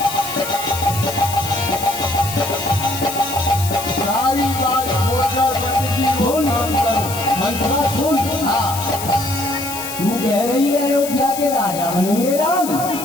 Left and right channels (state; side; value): noise; left; hiss, 9 dB below the sound